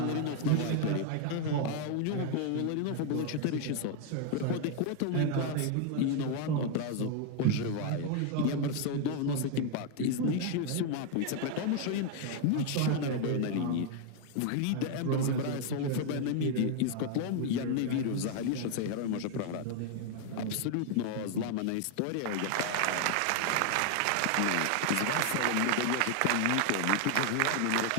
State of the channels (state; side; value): different; both; correlation 0.00